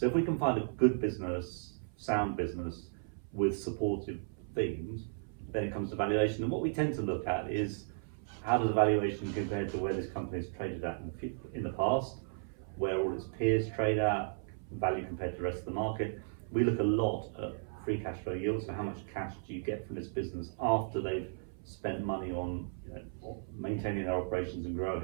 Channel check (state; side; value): silent; left; 54 dB below the other